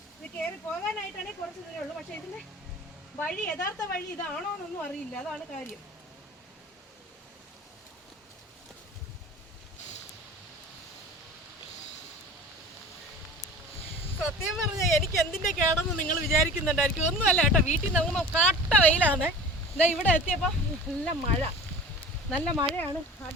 ഇത് കയറി പോകാനായിട്ടാണെങ്കിൽ കുറച്ച് ദൂരേ ഉള്ളൂ. പക്ഷെ ഇതിന്റെ വഴി, യഥാർത്ഥ വഴി ഇതാണോ എന്നൊന്നും അറിയില്ല, അതാണ് കാര്യം. സത്യം പറഞ്ഞാൽ എനിക്ക് എന്തിന്റെ കേടെന്ന് നിങ്ങൾ വിചാരിക്കുന്നുണ്ടായിരിക്കും. ഒന്നുമല്ല കേട്ടോ, വീട്ടിൽ നിന്ന് കാട്ട വെയിലാണ്. ഇതാ ഇവിടെ എത്തിയപ്പോൾ നല്ല മഴയാണ്.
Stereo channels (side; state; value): both; normal; correlation 0.39